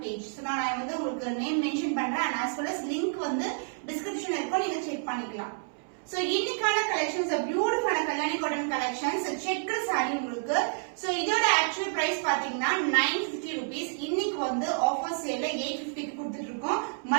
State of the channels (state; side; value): silent; left; 58 dB below the other